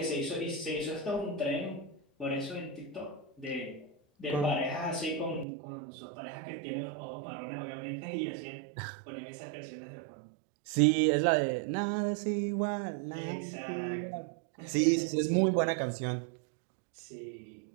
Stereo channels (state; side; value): drops out; left; at 5.5 s